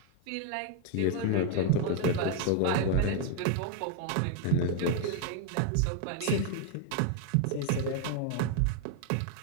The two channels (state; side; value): different; both; correlation 0.00